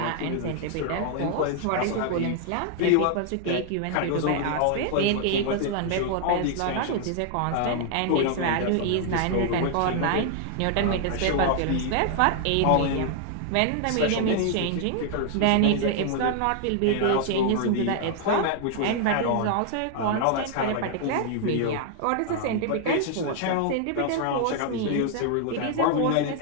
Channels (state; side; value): different; both; correlation 0.00